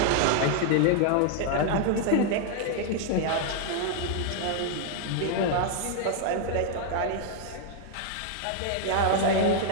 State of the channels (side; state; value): both; different; correlation 0.00